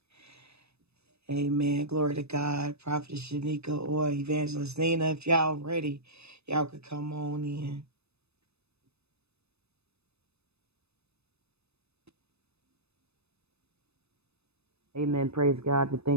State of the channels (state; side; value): late; left; 0.79 ms